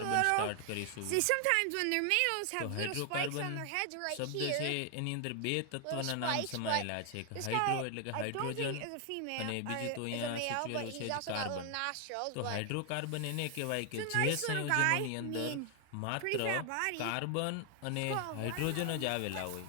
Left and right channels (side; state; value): both; different; correlation 0.00